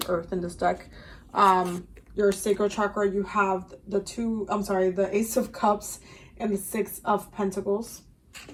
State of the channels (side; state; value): both; identical; correlation 1.00